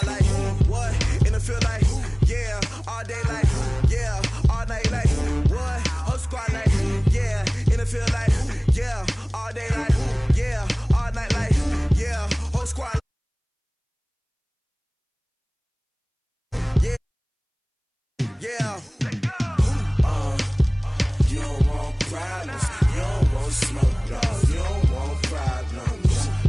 like, what? And it feel like, yeah, all day like, yeah, all night like, what? Whole squad like, yeah, and it feel like, yeah, all day like, yeah, all night like, yeah, whole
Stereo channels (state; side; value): identical; both; correlation 1.00